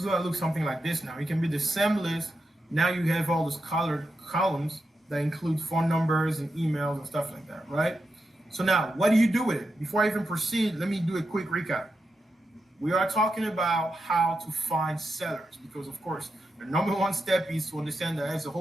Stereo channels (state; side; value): normal; both; correlation 0.87